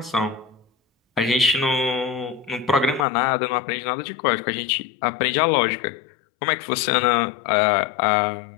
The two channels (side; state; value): right; drops out; at 3.1 s